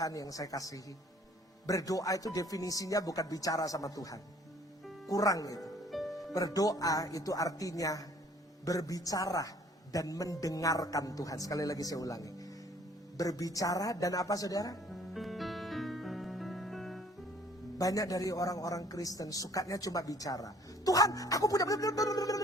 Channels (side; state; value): both; normal; correlation 0.57